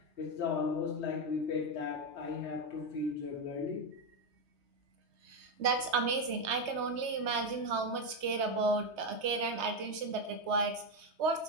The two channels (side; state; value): left; late; 3.2 ms